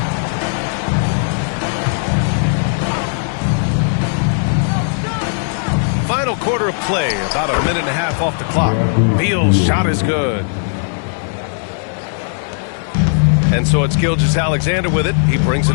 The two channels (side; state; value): right; silent; digital silence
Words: Final quarter of play, about a minute and a half off the clock. Beal's shot is good. And so it's Gilgeous-Alexander with it. He brings